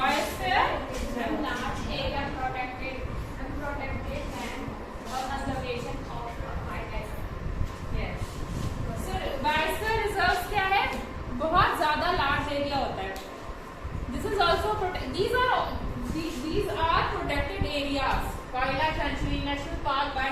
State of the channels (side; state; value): both; identical; correlation 1.00